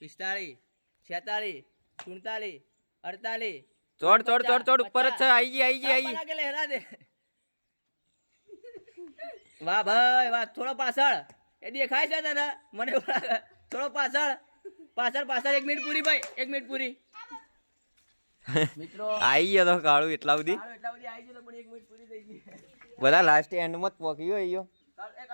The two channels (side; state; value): both; inverted; correlation -1.00